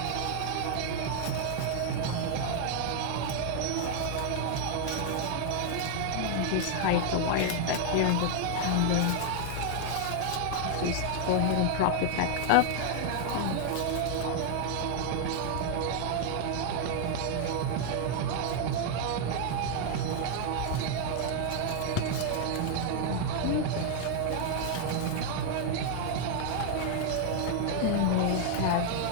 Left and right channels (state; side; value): different; both; correlation 0.00